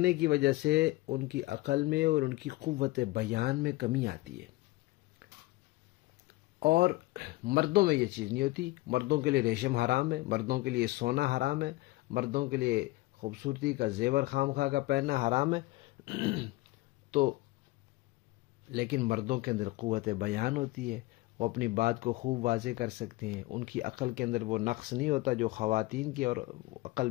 کی وجہ سے ان کی عقل میں اور ان کی قوت بیان میں کمی آتی ہے، اور مردوں میں یہ چیز نہیں ہوتی۔ مردوں کے لیے ریشم حرام ہے، مردوں کے لیے سونا حرام ہے، مردوں کے لیے خوبصورتی کا زیور خام خواہ کا پہننا حرام ہے۔ تو لیکن مردوں کے اندر قوت بیان ہوتی ہے، وہ اپنی بات کو خوب واضح کر سکتے ہیں، ان کی عقل کے اندر وہ نقص نہیں ہوتا جو خواتین کی اور عقل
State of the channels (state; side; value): quieter; right; 20.0 dB